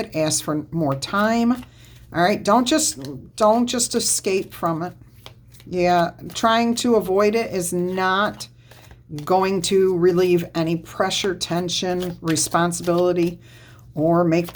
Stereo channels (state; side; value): identical; both; correlation 1.00